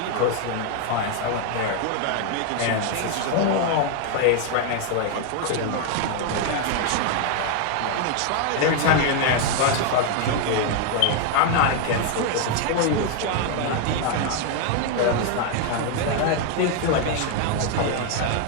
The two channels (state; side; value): different; both; correlation 0.01